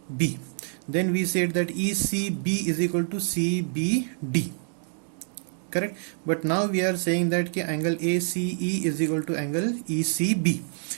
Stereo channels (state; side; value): silent; left; 60 dB below the other